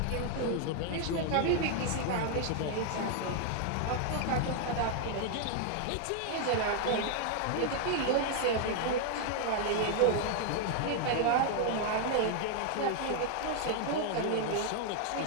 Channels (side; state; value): both; different; correlation 0.00